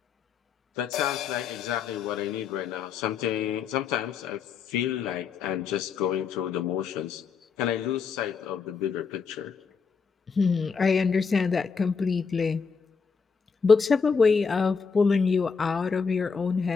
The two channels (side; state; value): right; quieter; 5.6 dB